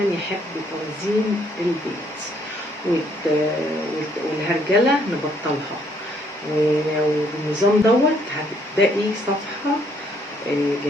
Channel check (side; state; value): both; normal; correlation 0.67